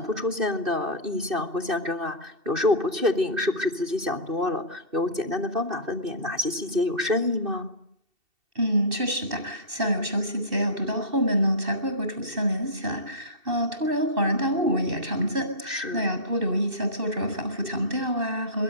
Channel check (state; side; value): late; left; 2.6 ms